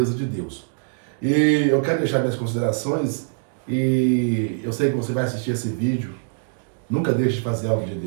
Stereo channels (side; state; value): left; silent; digital silence